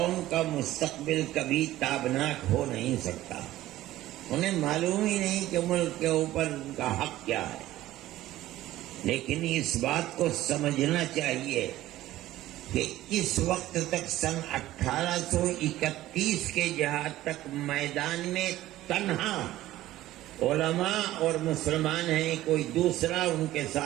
کا مستقبل کبھی تابناک ہو نہیں سکتا۔ انہیں معلوم ہی نہیں کہ ملک کے اوپر ان کا حق کیا ہے، لیکن اس بات کو سمجھنا چاہیے کہ اس وقت تک سن 1831 کے جہاد تک میدان میں تنہا علماء اور مسلمان ہیں، کوئی دوسرا ان کے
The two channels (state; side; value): quieter; left; 15.2 dB